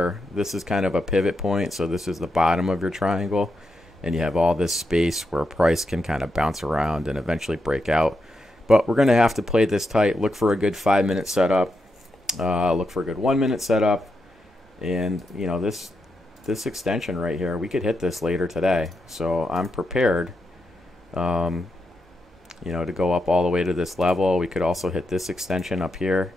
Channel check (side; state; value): both; normal; correlation 0.85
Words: this is kind of a pivot point. So this is the bottom of your triangle, and you have all this space where price can kind of bounce around and eventually break out. But we're going to have to play this tight. Look for a good 5-minute setup. Look for a good 1-minute setup, and you know, this extension right here, we could hit this later today. So I'm prepared, you know, to go up all the way to this level. We could also hit this extension up here.